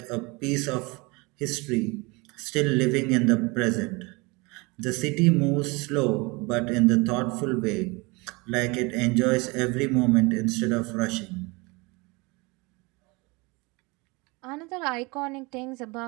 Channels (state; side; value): quieter; left; 26.6 dB